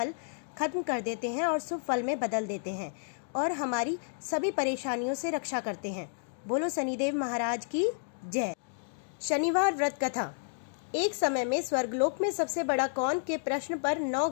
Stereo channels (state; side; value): silent; right; digital silence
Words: खत्म कर देते हैं और शुभ फल में बदल देते हैं और हमारी सभी परेशानियों से रक्षा करते हैं। बोलो शनिदेव महाराज की जय। शनिवार व्रत कथा। एक समय में स्वर्गलोक में सबसे बड़ा कौन के प्रश्न पर 9